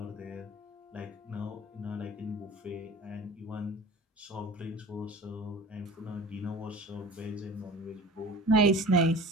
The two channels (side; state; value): both; normal; correlation 0.40